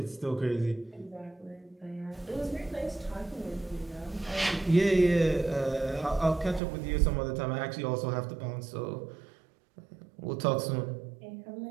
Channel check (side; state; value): left; drops out; at 6.6 s